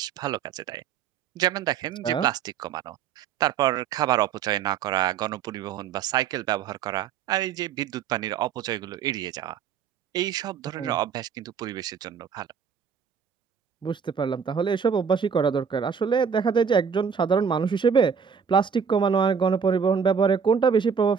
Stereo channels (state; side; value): quieter; left; 6.8 dB